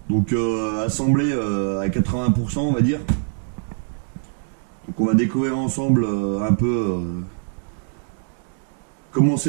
donc assemblé à 80% on va dire. Donc on va découvrir ensemble un peu comment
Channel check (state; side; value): silent; left; digital silence